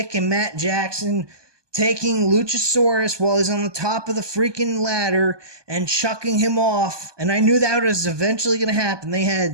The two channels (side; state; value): left; late; 1.2 ms